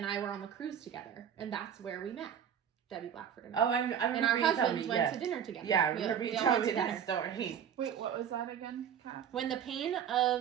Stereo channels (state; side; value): quieter; left; 8.6 dB